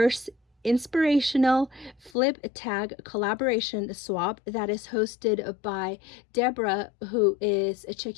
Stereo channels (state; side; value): drops out; right; at 2.1 s